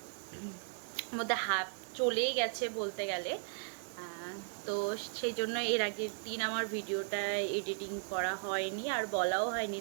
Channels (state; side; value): silent; left; digital silence